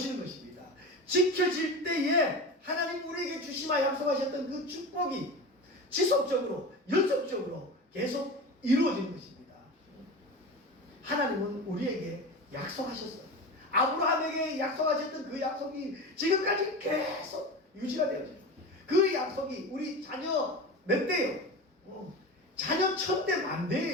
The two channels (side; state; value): both; normal; correlation 0.29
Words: 것입니다. 지켜질 때에 하나님 우리에게 주시마 약속하셨던 그 축복이 지속적으로 연속적으로 계속 이루어지는 것입니다. 하나님은 우리에게 약속하셨어요. 아브라함에게 약속하셨던 그 약속이 지금까지 계속 유지가 되어져요. 그 약속이 우리 자녀 몇 대요? 자녀 1000대